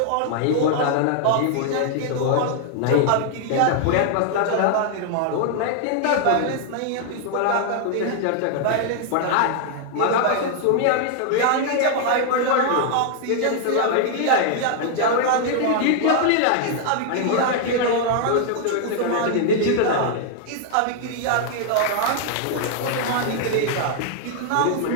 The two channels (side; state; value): both; different; correlation 0.00